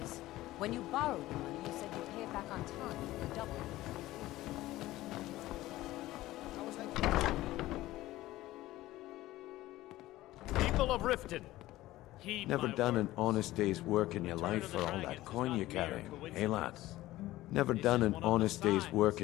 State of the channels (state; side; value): quieter; right; 16.6 dB